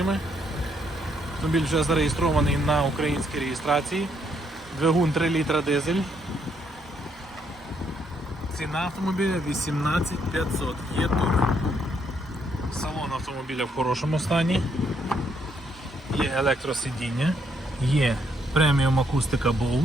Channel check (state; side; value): normal; both; correlation 0.73